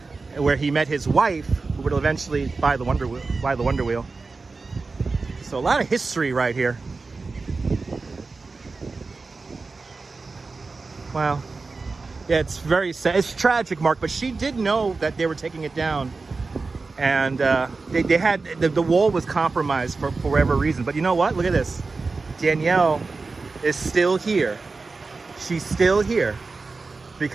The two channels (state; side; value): quieter; left; 4.0 dB